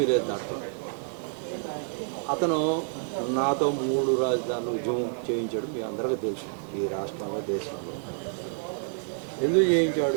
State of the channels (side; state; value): left; silent; 59 dB below the other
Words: లేదు దాంట్లో. అతను నాతో 3 రాజధానులు ఉద్యమం చేయించాడు. మీ అందరికీ తెలుసు. ఈ రాష్ట్రంలో దేశంలో ఎందుకు